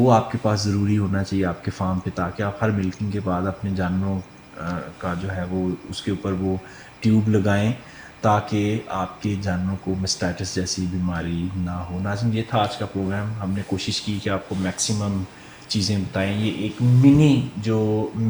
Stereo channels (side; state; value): both; identical; correlation 1.00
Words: آپ کے پاس ضروری ہونا چاہیے آپ کے فارم پہ، تاکہ آپ ہر ملکنگ کے بعد اپنے جانوروں کا جو ہے وہ اس کے اوپر وہ ٹیوب لگائیں تاکہ آپ کے جانوروں کو مسٹائٹس جیسی بیماری نہ ہو. ناظرین، یہ تھا آج کا پروگرام. ہم نے کوشش کی کہ آپ کو میکسیمم چیزیں بتائیں. یہ ایک منی جو